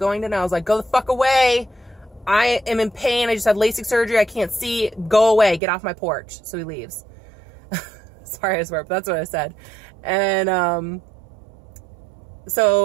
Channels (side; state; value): left; drops out; at 5.6 s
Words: today. I was like, go the fuck away. I am in pain. I just had Lasik surgery. I can't see. Go away. Get off my porch. So he leaves. Sorry, I swear, but that's what I said. And,